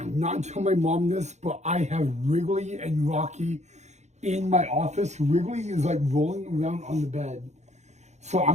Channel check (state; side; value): late; left; 0.33 ms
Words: tell my mom this, but I have Wrigley and Rocky in my office. Wrigley is like rolling around on the bed. So